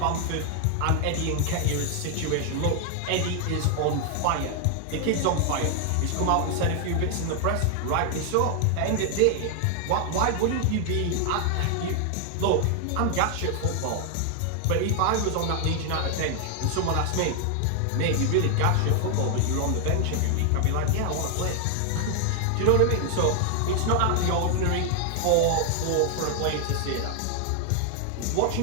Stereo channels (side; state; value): both; different; correlation 0.00